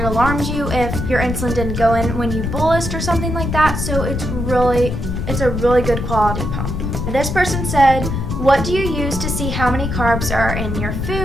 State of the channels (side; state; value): left; noise; rumble, 3 dB below the sound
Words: alarms you if your insulin didn't go in when you bolused or something like that. So it's a really good quality pump. This person said, what do you use to see how many carbs are in your